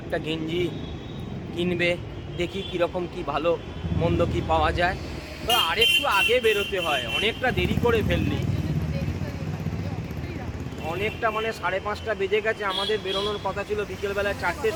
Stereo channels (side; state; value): both; identical; correlation 1.00